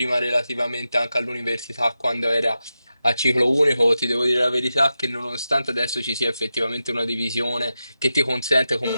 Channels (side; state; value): both; inverted; correlation -0.90